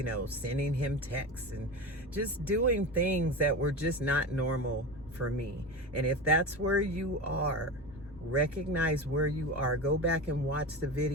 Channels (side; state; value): both; normal; correlation 0.25